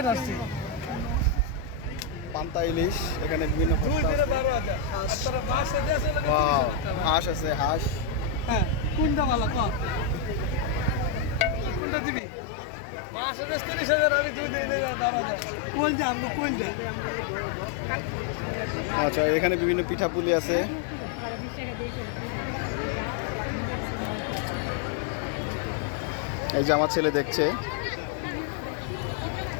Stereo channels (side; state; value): right; drops out; at 11.8 s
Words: পান্তা ইলিশ, এখানে বিভিন্ন হাঁস আছে, হাঁস। কোনটা ভালো কোনটা দিবি? আচ্ছা, এখানে বিভিন্ন পিঠাপুলি আছে। এই যে আমার ছেলে দেখছে।